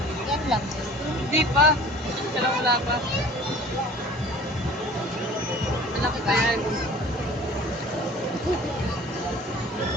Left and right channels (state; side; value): normal; both; correlation 0.46